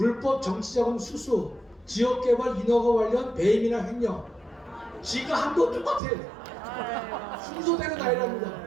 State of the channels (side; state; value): left; drops out; at 6.0 s